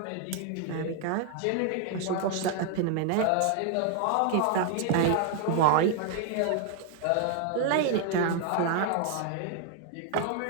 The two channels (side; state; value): both; different; correlation 0.00